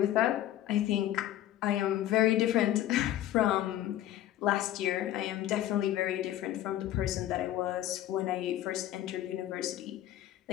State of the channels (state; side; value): quieter; right; 13.1 dB